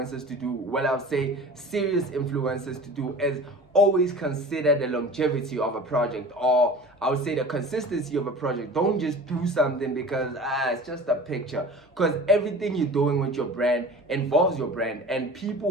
to do, well, I'll say serious influencers to do, is always consider the longevity of a project, or I would say the consistency of a project. Don't just do something because it's just a picture, because everything you're doing with your brand involves your brand, and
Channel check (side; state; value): both; normal; correlation 0.39